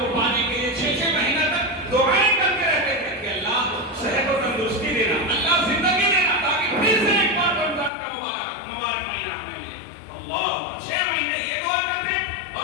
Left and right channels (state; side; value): drops out; right; at 7.9 s